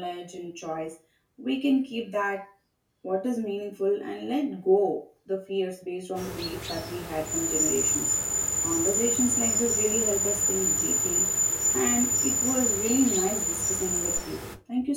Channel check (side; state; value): both; identical; correlation 1.00